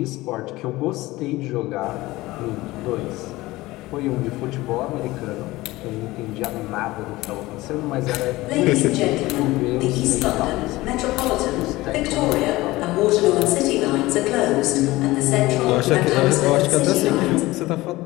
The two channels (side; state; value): right; quieter; 19.1 dB